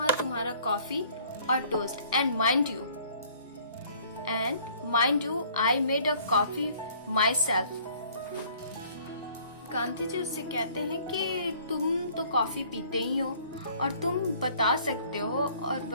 तुम्हारा कॉफी और toast. And mind you I made a coffee myself. Gandhi ji उससे कहते हैं कि तुम तो कॉफी पीते ही हो और तुम बता सकते हो और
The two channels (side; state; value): both; inverted; correlation -0.56